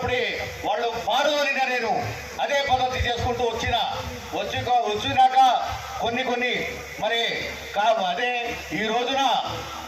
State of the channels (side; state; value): both; identical; correlation 1.00